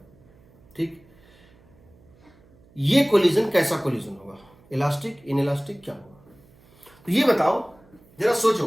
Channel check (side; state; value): right; noise; hum, 28 dB below the sound